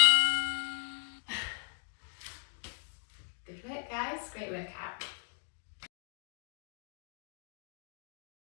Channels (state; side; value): silent; right; 53 dB below the other